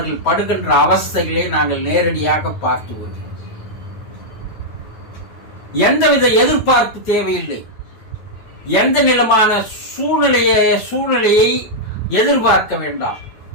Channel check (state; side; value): late; right; 9.2 ms